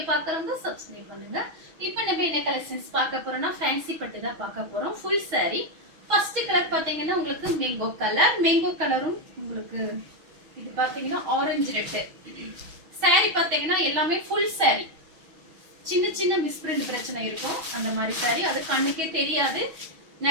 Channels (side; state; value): left; late; 6.3 ms